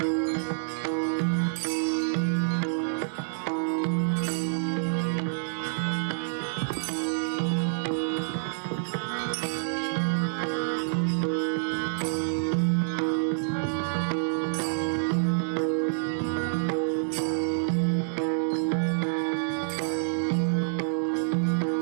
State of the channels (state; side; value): silent; left; 60 dB below the other